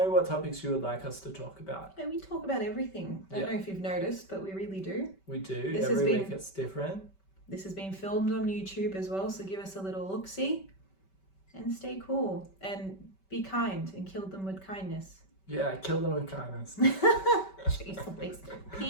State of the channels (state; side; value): late; right; 5.2 ms